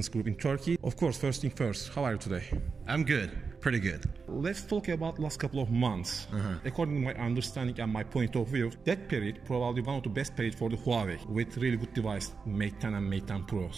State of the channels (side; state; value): left; quieter; 5.1 dB